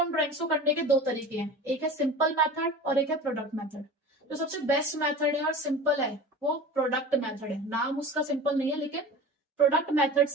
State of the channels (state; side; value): normal; both; correlation 0.35